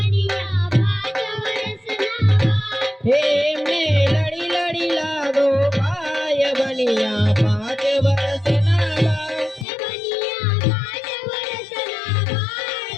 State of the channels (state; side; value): drops out; right; at 9.7 s